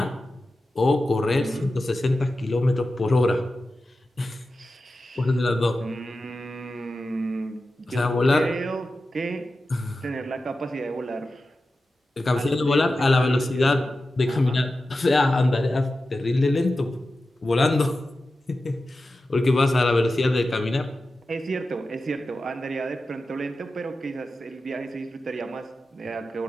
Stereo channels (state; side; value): normal; both; correlation 0.93